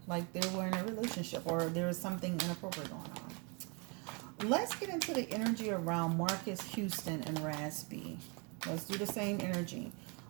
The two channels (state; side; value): quieter; left; 32.7 dB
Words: Like they were in a relationship or there is something inappropriate going on. Let's get into the energy around Marcus Houston and Raz B. Let's do the same energy.